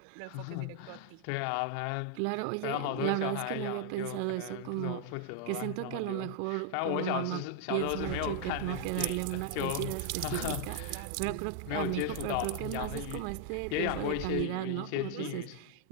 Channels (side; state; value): both; different; correlation 0.00